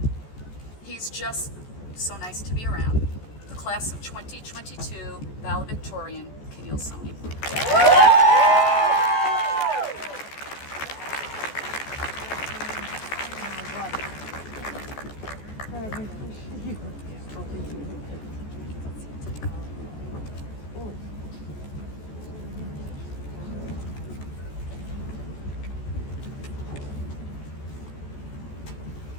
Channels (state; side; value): late; right; 14 ms